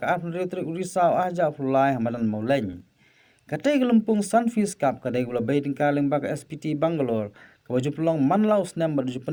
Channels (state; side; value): identical; both; correlation 1.00